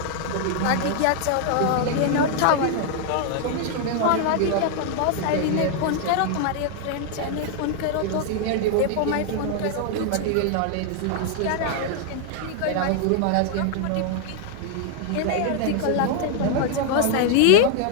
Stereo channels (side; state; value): both; different; correlation 0.00